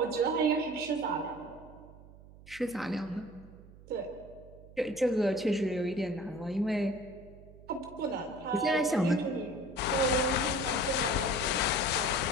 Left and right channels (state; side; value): noise; right; hum, 20 dB below the sound